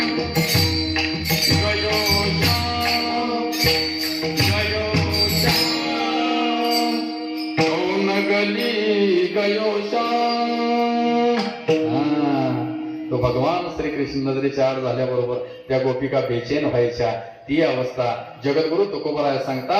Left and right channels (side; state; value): both; identical; correlation 1.00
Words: गयो श्याम, गयो श्याम, कौन गली गयो श्याम. तो भगवान श्रीकृष्ण नजरेच्या आड झाल्याबरोबर त्या गोपिका बेचैन व्हायच्या. ती अवस्था जगद्गुरु तुकोबराय